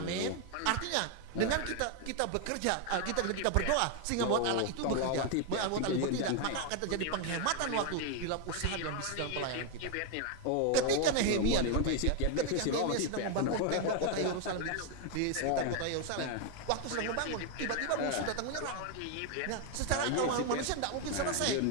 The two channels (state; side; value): different; both; correlation 0.01